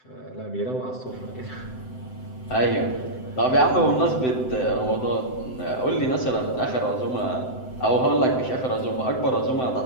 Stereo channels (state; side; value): late; right; 7.8 ms